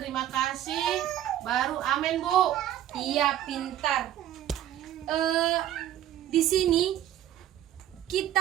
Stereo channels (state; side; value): quieter; left; 11.9 dB